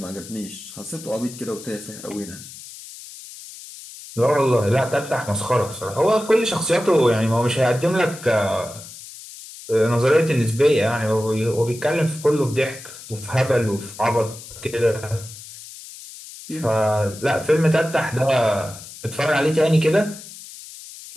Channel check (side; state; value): left; noise; hiss, 15 dB below the sound